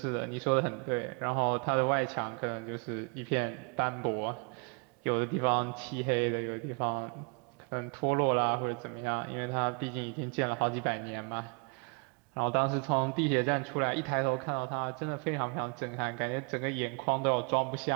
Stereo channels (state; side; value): quieter; left; 34.4 dB